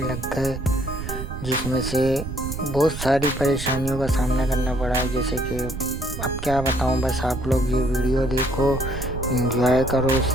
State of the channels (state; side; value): noise; right; rumble, 7 dB below the sound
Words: लग गए, जिसमें से बहुत सारी परेशानियों का सामना करना पड़ा है। जैसे कि अब क्या बताऊं, बस आप लोग ये वीडियो देखो, एंजॉय करो,